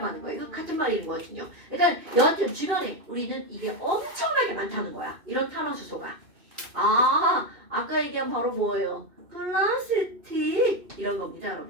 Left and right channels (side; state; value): left; late; 2.6 ms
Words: 하는 거예요. 이거 같은 말인 거거든요. 그러니까 여하튼 주변에 우리는 이게 엄청나게 많다는 거야. 이런 탄화수소가. 아까 얘기한 바로 뭐예요? 플라스틱 이런 겁니다,